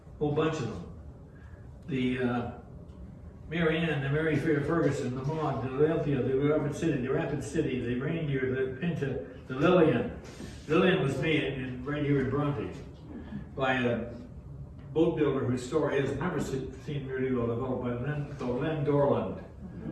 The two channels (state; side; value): identical; both; correlation 1.00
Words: whole bunch of them. The Mary Ann, the Mary Fair Ferguson, the Maud, the Olympia, the Rapid City, the Reindeer, the Pinta, the Lillian. Lillian was made right here in Bronte by a boat builder whose story has never seen really well developed, by Len Dorland.